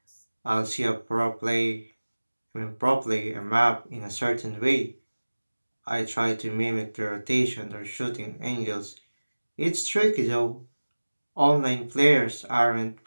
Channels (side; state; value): both; inverted; correlation -1.00